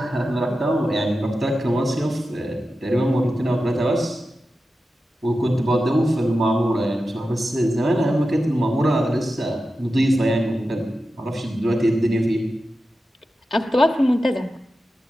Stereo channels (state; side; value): normal; both; correlation 0.92